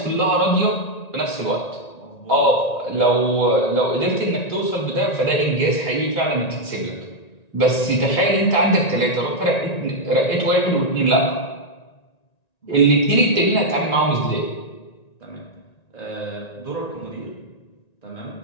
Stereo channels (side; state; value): right; late; 1.9 ms